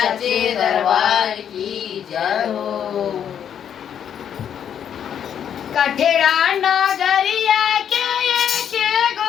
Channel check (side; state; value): right; quieter; 8.8 dB